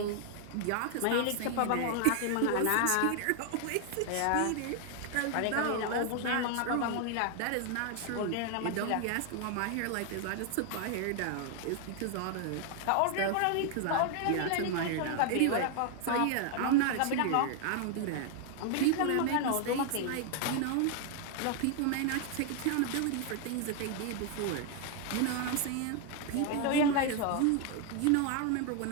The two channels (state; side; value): different; both; correlation 0.00